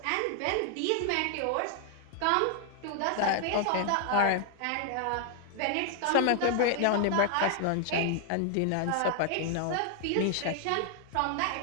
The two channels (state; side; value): different; both; correlation 0.00